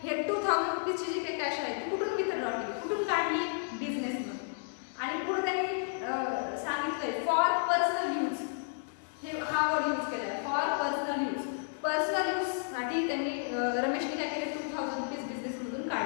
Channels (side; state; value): right; silent; 56 dB below the other